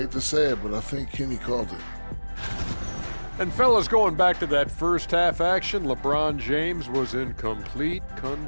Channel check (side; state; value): both; inverted; correlation -1.00